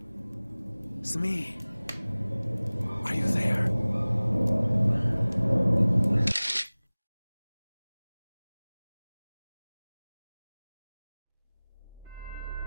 Smee. Are you there?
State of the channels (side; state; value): both; inverted; correlation -0.99